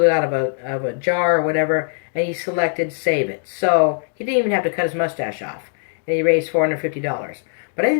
it out of a jar or whatever, and he selected save it. So he didn't even have to cut his mustache off, and he raised $450. But I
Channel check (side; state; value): right; silent; digital silence